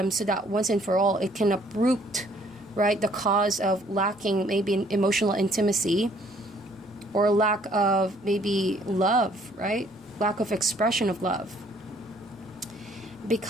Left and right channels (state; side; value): normal; both; correlation 0.61